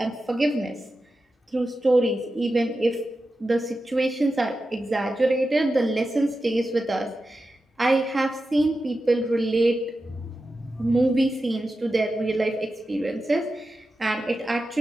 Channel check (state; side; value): normal; both; correlation 0.91